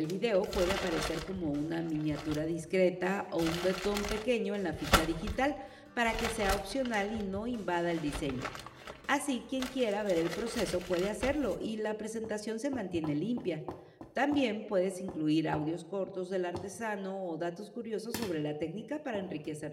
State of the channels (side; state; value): both; identical; correlation 1.00